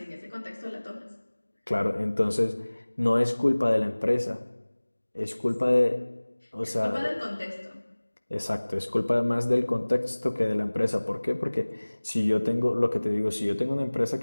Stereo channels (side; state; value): both; inverted; correlation -1.00